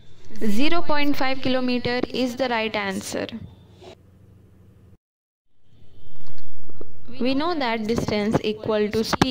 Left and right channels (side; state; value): both; identical; correlation 1.00